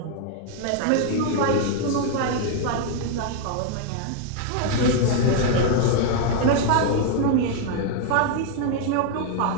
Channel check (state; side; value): different; both; correlation 0.00